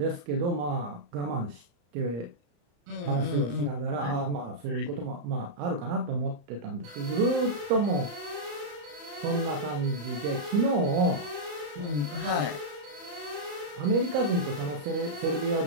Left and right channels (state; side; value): late; left; 34 ms